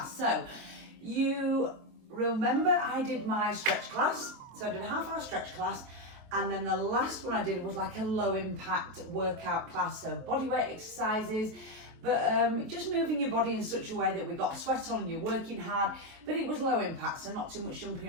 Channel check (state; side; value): late; left; 23 ms